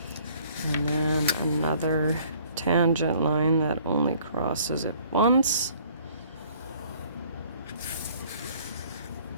And then another tangent line that only crosses it once.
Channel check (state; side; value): inverted; both; correlation -0.57